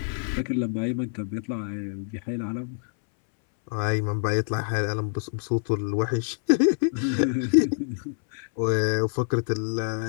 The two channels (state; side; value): silent; right; 61 dB below the other